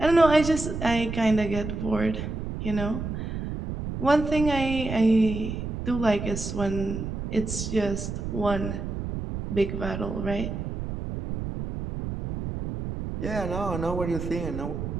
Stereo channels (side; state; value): right; noise; rumble, 5 dB below the sound